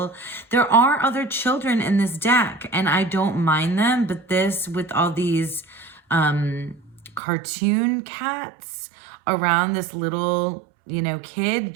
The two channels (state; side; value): drops out; left; at 7.2 s